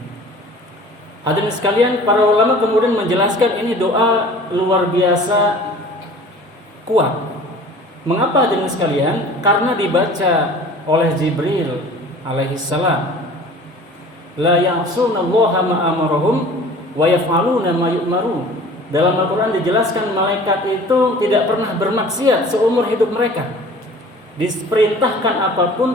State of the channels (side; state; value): both; normal; correlation 0.45